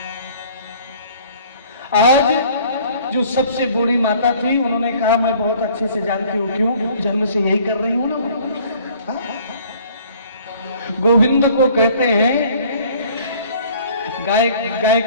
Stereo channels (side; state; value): both; inverted; correlation -0.54